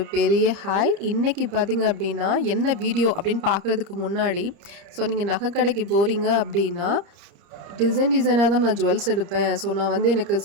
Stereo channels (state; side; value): late; left; 30 ms